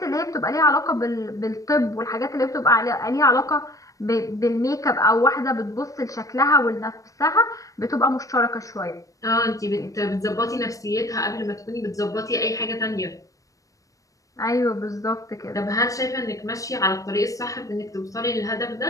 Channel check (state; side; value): late; right; 0.16 ms